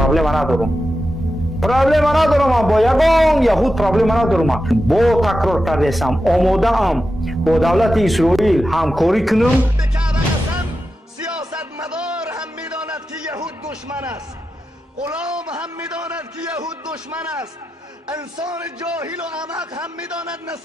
پرابلم ندارم با یگان یهود پرابلم ندارم. با تکرار کردم آماده ام با دولت اسرائیل همکاری کنم. سیاستمدار هم میداند که یهود دشمن است، غلام هم میداند که یهود دشمن است، انسان جاهل و احمق هم میداند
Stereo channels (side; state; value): both; normal; correlation 0.90